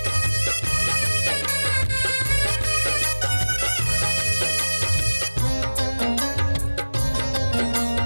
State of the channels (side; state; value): both; inverted; correlation -1.00